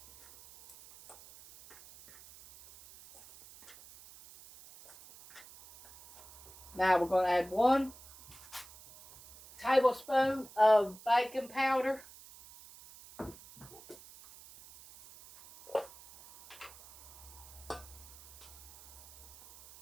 Now we're going to add 1 tablespoon of baking powder.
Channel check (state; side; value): noise; right; hiss, 20 dB below the sound